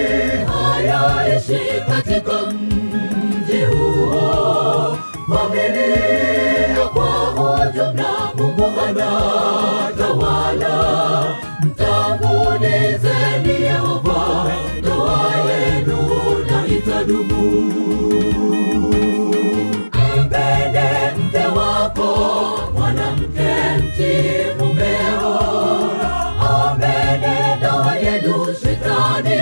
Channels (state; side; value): inverted; both; correlation -1.00